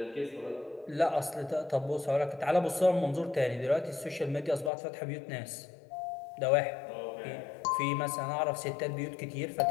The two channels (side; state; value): right; drops out; at 4.7 s